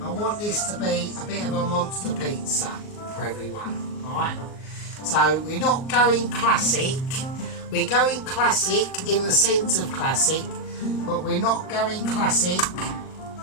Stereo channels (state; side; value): late; right; 38 ms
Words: I want this to be a bit of a monster pizza for everyone, alright? So we're not going classic. We're going classic in the sense of classic, but we're not going classic